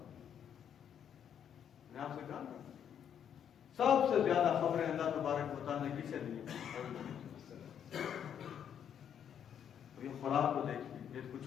میں آپ سے کہا سب سے زیادہ خبریں اللہ تبارک و تعالیٰ نے کسے دی؟ یہ خوراک کو دیکھیے, یہ کوئی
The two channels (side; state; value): right; quieter; 8.8 dB